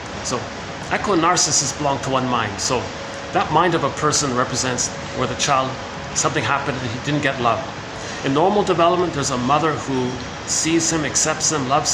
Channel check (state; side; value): identical; both; correlation 1.00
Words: so echo and narcissist belong to one mind. So that mind of a person represents where the child, something happened and he didn't get love. In normal development, there's a mother who sees him, accepts him, loves